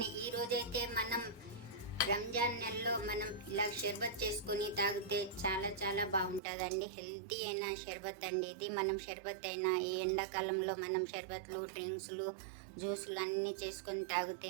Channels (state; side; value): drops out; left; at 6.4 s